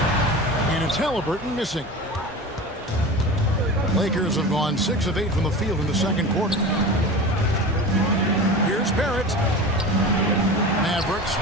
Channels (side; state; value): both; normal; correlation 0.31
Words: And it's Halliburton missing. Lakers have gone 6 of 8 from the field in the second quarter. Here's Barrett. Mavericks